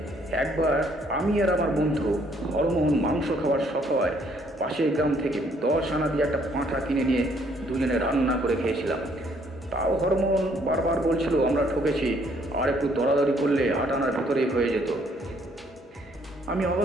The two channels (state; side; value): normal; both; correlation 0.65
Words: একবার আমি আর আমার বন্ধু হরমোহন মাংস খাওয়ার শখ হয় পাশের গ্রাম থেকে 10 আনা দিয়ে একটা পাঁঠা কিনে নিয়ে দুজনে রান্না করে খেয়েছিলাম। তাও হরমোহন বারবার বলছিল আমরা ঠকেছি, আর একটু দরাদরি করলে 8 আনার ভেতরেই হয়ে যেত। আমি